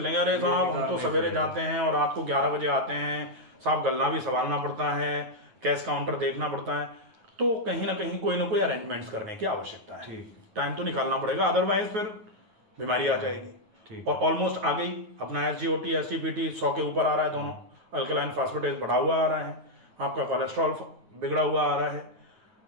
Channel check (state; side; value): late; left; 9.4 ms